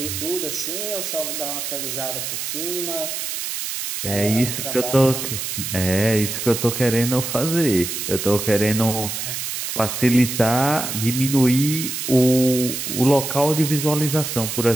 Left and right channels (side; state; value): right; noise; hiss, 4 dB below the sound